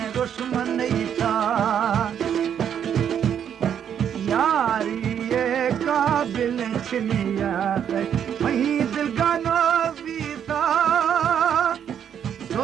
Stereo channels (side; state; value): left; quieter; 8.8 dB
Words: दुश्मन था यारी ये काबिल छिनियात वही दिल का नबीता